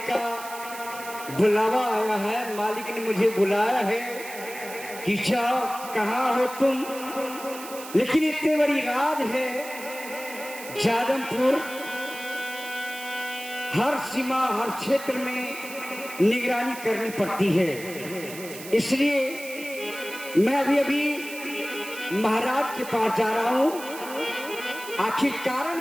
का बुलावा आया है, मालिक ने मुझे बुलाया है कि जाओ, कहाँ हो तुम। लेकिन इतनी बड़ी राज है जादमपुर, हर सीमा हर क्षेत्र में निगरानी करनी पड़ती है। इसलिए मैं अभी महाराज के पास जा रहा हूँ। आखिर कारण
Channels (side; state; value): right; noise; hiss, 13 dB below the sound